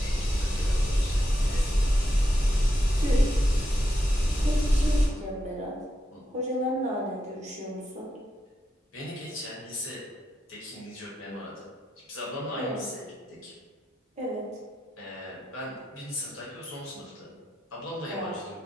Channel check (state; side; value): normal; both; correlation 0.85